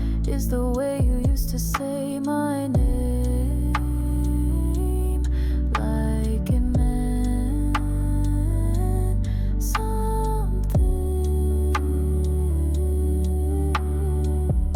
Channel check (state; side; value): identical; both; correlation 1.00